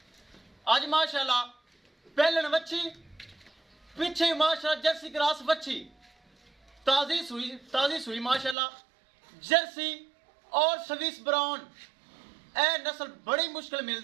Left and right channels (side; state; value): left; drops out; at 8.6 s